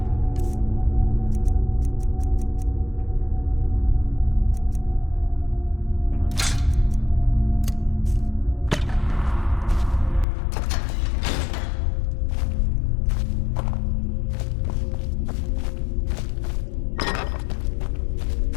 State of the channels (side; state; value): right; drops out; at 10.2 s